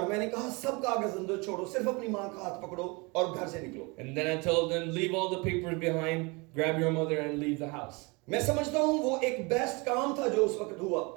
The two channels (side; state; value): left; quieter; 27.8 dB